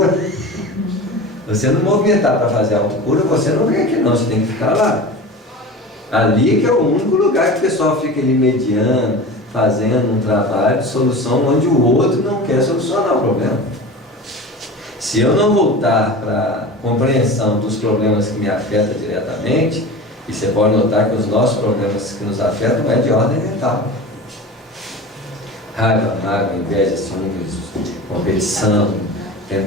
você não movimentar para fazer autocura, você não vem aqui não, você tem que ficar lá. Ali que é o único lugar que o pessoal fica ali mediando, fazendo um trabalho de solução onde o outro não quer solucionar o problema. Se eu não voltar para a compreensão dos problemas que me afetam diretamente, e você pode notar que os nossos problemas que nos afetam não é de ordem mental. Raiva, mágoa, inveja, ciúmes, competição,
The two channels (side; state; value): both; normal; correlation 0.33